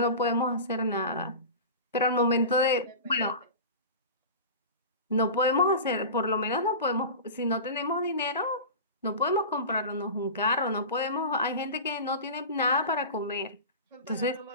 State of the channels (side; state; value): both; inverted; correlation -0.31